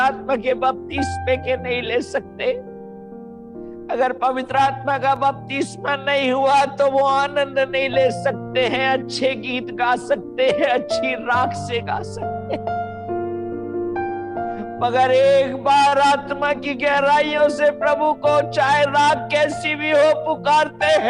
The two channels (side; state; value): both; identical; correlation 1.00